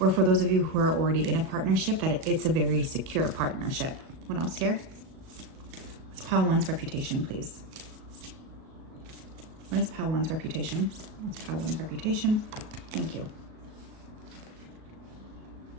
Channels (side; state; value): left; late; 37 ms